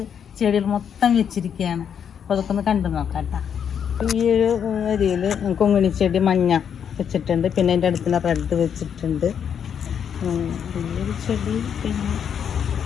ചെടികൾ മൊത്തം വെച്ചിരിക്കുകയാണ്. അപ്പോൾ അതൊക്കെ ഒന്ന് കണ്ടു നോക്കാം കേട്ടോ. ഈ ഒരു ഏരിയയിൽ കൊങ്ങിണി ചെടി മഞ്ഞ വെച്ചിട്ടുണ്ട്. പിന്നെ അതിൻ്റെ അടുത്തുള്ള റെഡ് വെച്ചിട്ടുണ്ട്. ഈ ഒരു ചെടി പിന്നെ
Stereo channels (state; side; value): quieter; right; 8.0 dB